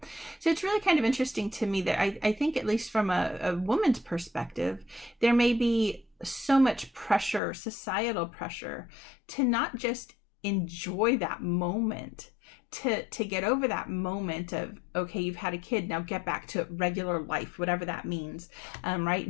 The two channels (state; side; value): drops out; right; at 7.4 s